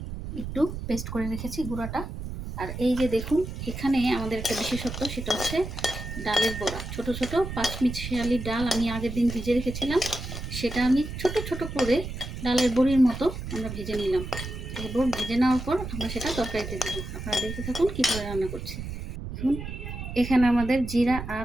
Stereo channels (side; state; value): right; noise; rumble, 7 dB below the sound